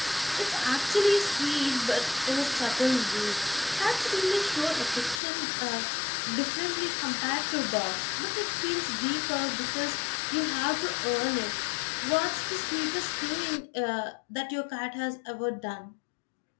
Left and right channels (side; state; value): right; drops out; at 5.2 s